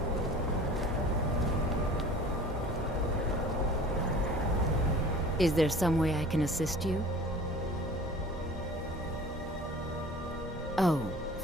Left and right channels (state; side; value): normal; both; correlation 0.44